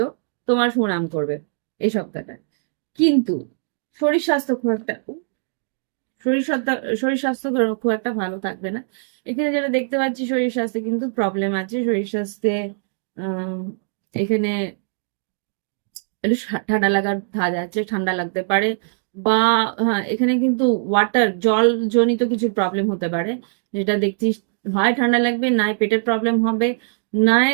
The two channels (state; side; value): silent; left; digital silence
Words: হোক, তোমার সুনাম করবে এই সপ্তাহটা। কিন্তু শরীর স্বাস্থ্য খুব একটা শরীর স্বাস্থ্য শরীর স্বাস্থ্য খুব একটা ভালো থাকবে না। এখানে যেটা দেখতে পাচ্ছি, শরীর স্বাস্থ্যে কিন্তু প্রবলেম আছে। শরীর স্বাস্থ্যে আহ এখানে একটু ঠান্ডা লাগার ধাঁচ আছে, ঠান্ডা লাগতে পারে, বা হ্যাঁ এখানে কিন্তু জল জনিত কিছু প্রবলেম হতে পারে, যেটা দেখছি হয় ঠান্ডা লাগবে, নাই পেটের প্রবলেম হবে, নাই